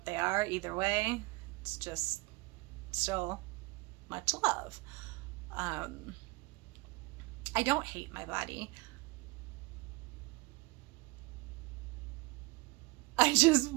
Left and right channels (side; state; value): left; quieter; 24.5 dB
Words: they are, either way, it's just still much love. I don't hate my body. I just